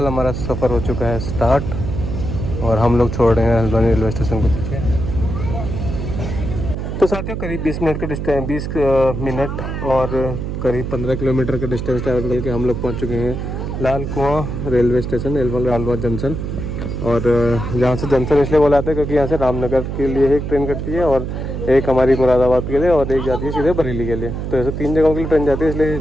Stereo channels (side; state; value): right; noise; hum, 4 dB below the sound